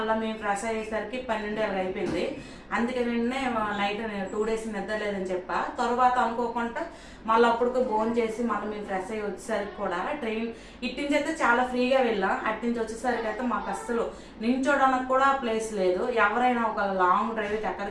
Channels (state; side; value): identical; both; correlation 1.00